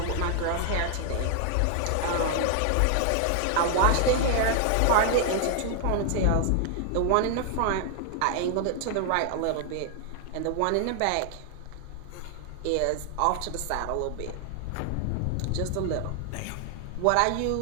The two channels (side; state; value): both; different; correlation 0.00